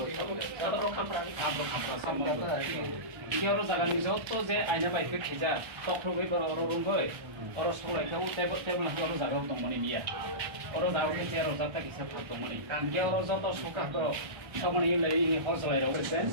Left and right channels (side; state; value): left; late; 1.3 ms